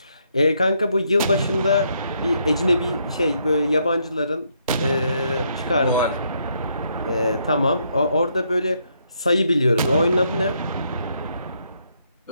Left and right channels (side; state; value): both; inverted; correlation -0.74